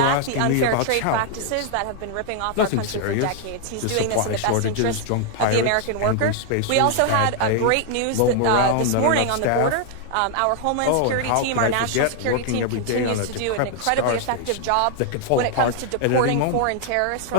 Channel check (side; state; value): both; different; correlation 0.00